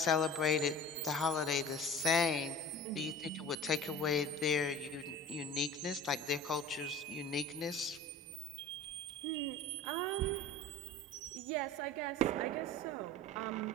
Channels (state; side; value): normal; both; correlation 0.38